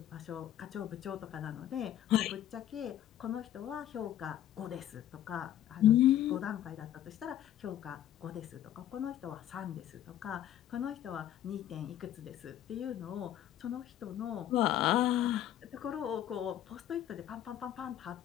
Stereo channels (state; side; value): quieter; right; 11.7 dB